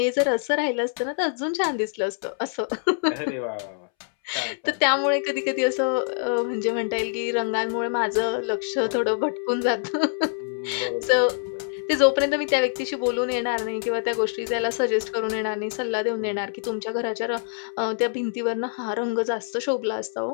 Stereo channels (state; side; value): silent; right; 62 dB below the other